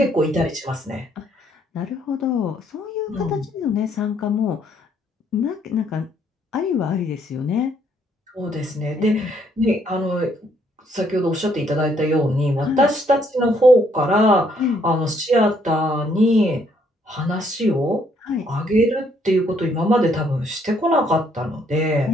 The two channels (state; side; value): normal; both; correlation 0.68